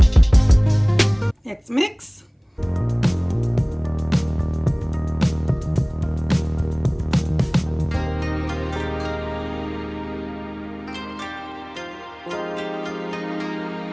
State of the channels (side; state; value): both; identical; correlation 1.00